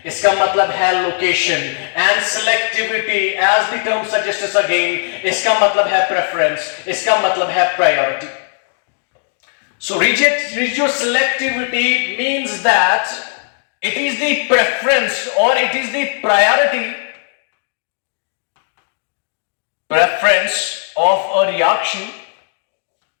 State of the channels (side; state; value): right; silent; digital silence